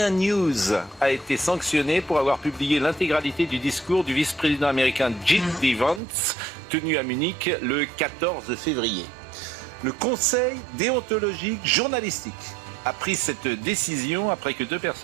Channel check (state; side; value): drops out; left; at 6.0 s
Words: News a été sanctionné pour avoir publié l'intégralité du discours du vice-président américain J.D. Vance tenu à Munich le 14 février. Le Conseil déontologique journalistique a pris cette décision après que 2